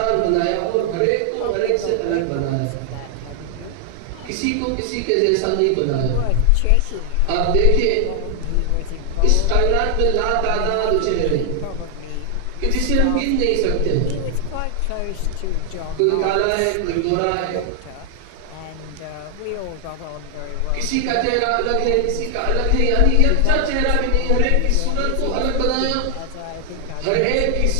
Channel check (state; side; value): different; both; correlation 0.00